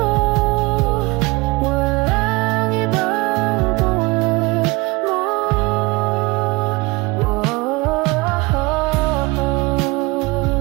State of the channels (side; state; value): left; quieter; 24.1 dB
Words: Walang ibang tulad mo.